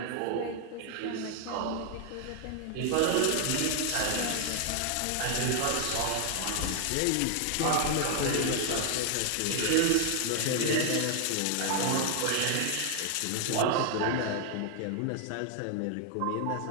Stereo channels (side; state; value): both; different; correlation 0.00